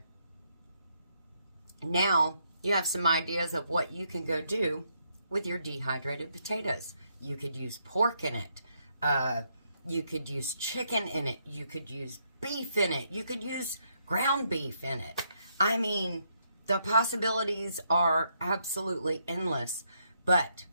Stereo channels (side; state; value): both; inverted; correlation -0.76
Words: Now, you have some ideas of what you can go do with your dehydrated potatoes. You could use pork in it. You could use chicken in it. You could use beef in it. You could use ground beef in it. I mean, the possibilities are absolutely endless. But